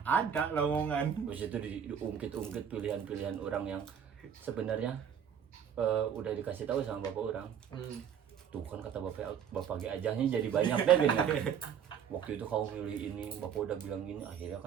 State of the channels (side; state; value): left; quieter; 8.1 dB